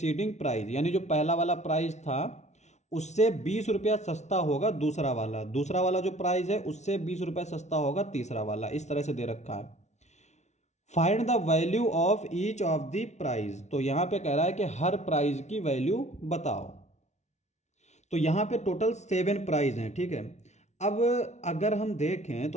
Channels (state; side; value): late; right; 0.32 ms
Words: prize, यानी जो पहला वाला प्राइज था उससे 20 रुपया सस्ता होगा दूसरा वाला जो प्राइस है उससे 20 रुपया सस्ता होगा तीसरा वाला। इस तरह से दे रखा है। Find the value of each of the prize. तो यहां पे कह रहा है कि हर प्राइज की वैल्यू बताओ। तो यहां पे टोटल 7 प्राइज हैं, ठीक है। अब अगर हम देखें